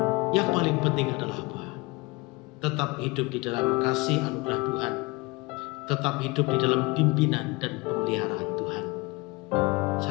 yang paling penting adalah apa? Tetap hidup di dalam kasih anugerah Tuhan, tetap hidup di dalam pimpinan dan pemeliharaan Tuhan.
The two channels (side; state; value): right; quieter; 24.9 dB